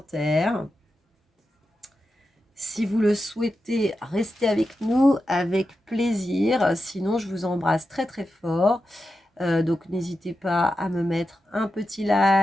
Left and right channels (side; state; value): both; normal; correlation 0.90